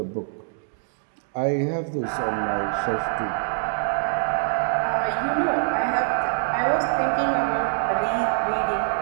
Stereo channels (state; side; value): silent; left; digital silence